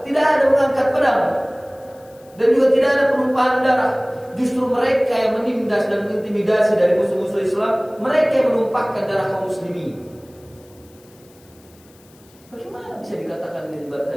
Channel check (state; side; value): noise; left; hiss, 29 dB below the sound